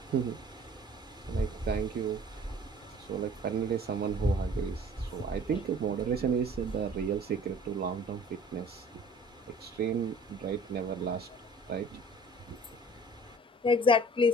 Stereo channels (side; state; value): both; normal; correlation 0.49